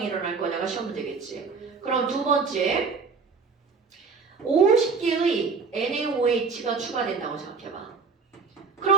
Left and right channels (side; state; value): left; quieter; 4.9 dB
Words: 일어날 거냐가 시험 문제겠지. 그럼 두 번째 50개의 NaOH가 추가된다고 생각해봐.